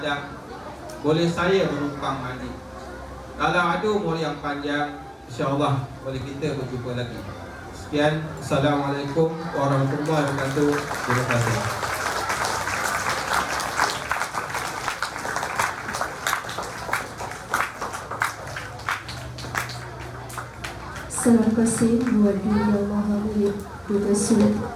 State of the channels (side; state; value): both; identical; correlation 1.00